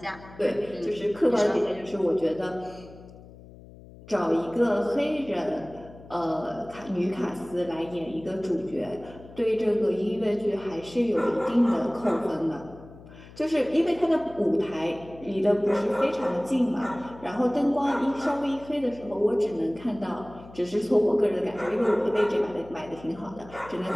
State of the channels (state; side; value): noise; left; hum, 19 dB below the sound